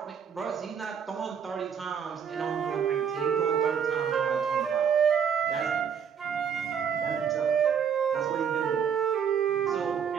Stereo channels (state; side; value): quieter; left; 7.5 dB